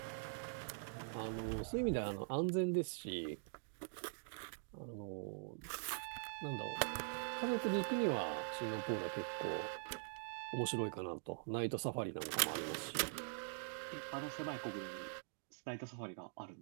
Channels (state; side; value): silent; left; digital silence